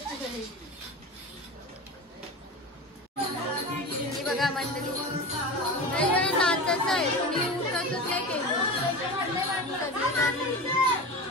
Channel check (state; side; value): normal; both; correlation 0.29